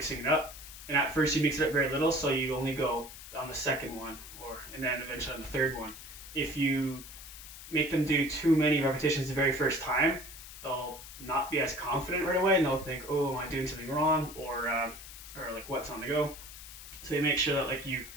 it up. And at first, you mix it up very little, so you only go on the second one, and then eventually on the third one. If you make them do too many repetitions the very first time, they'll not be as confident right away, and they'll think, "Oh, am I doing something wrong?" or like, "What's on the go?" So you make sure that like you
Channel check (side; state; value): left; noise; hiss, 14 dB below the sound